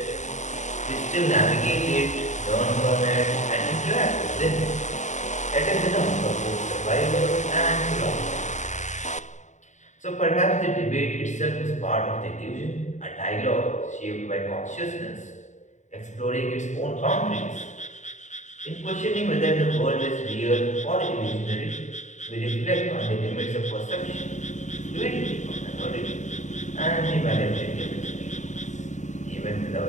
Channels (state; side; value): late; right; 0.35 ms